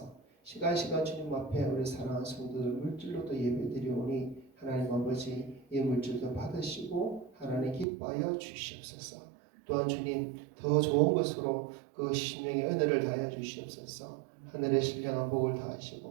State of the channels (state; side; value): drops out; left; at 7.9 s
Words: 시간 주님 앞에 우리 사랑하는 성도들 물질로도 예배드리오니 하나님 아버지 이 물질도 받으시고 하나님 기뻐하여 주시옵소서. 또한 주님 더 좋은 것으로 그 심령의 은혜를 다하여 주시옵소서. 하늘의 신령한 복을